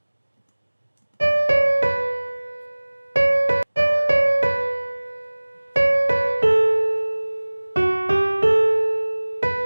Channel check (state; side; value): inverted; both; correlation -1.00